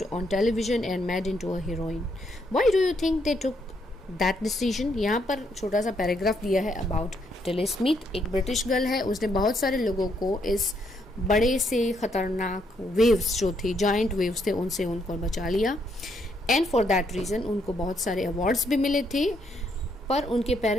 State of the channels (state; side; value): normal; both; correlation 0.74